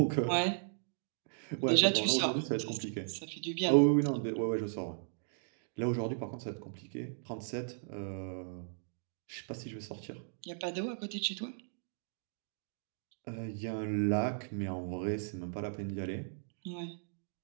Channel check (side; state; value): left; silent; digital silence